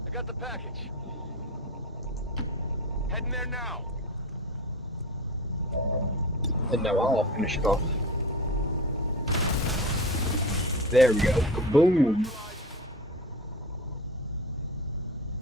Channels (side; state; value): both; normal; correlation 0.30